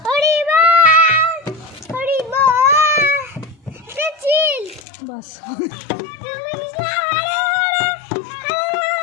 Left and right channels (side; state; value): right; drops out; at 4.8 s